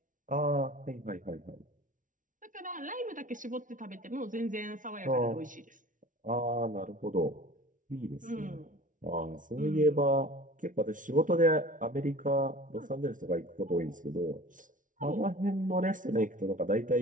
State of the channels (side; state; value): left; late; 0.38 ms